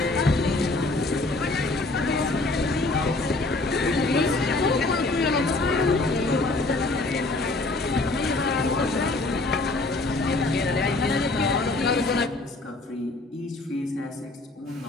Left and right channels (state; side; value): quieter; right; 3.1 dB